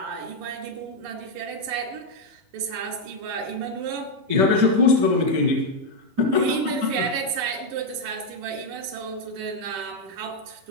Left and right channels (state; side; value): late; left; 10 ms